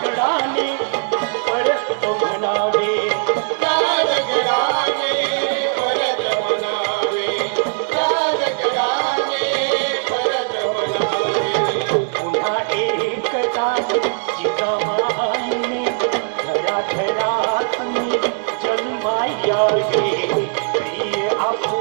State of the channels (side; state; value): left; silent; digital silence